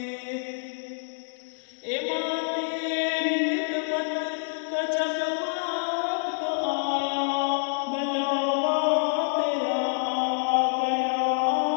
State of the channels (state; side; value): silent; right; digital silence